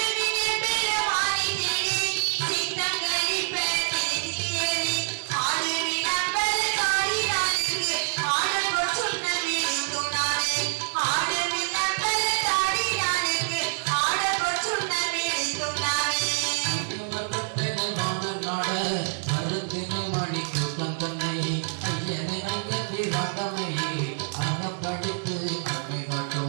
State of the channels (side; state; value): left; silent; 61 dB below the other